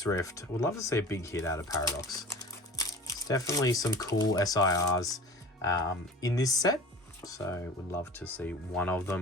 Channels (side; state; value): both; normal; correlation 0.38